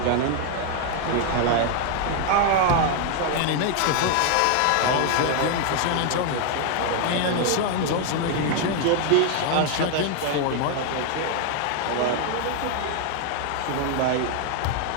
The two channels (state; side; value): different; both; correlation 0.00